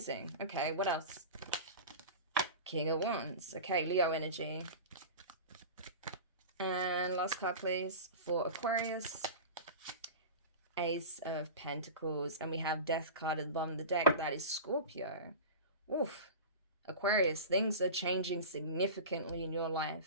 Okay, what else? King of Wands. Okay, Leo energy. And last card, please, for Aquarius. Ace of Pentacles. And we have Death card at the bottom of the deck. That is Scorpio. Oof. Aquarius, things are changing significantly in your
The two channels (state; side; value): inverted; both; correlation -0.31